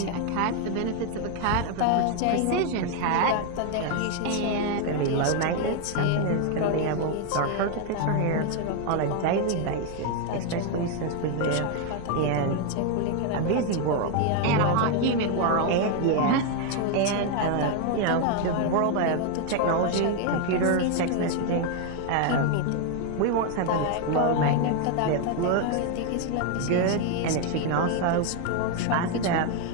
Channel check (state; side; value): different; both; correlation 0.01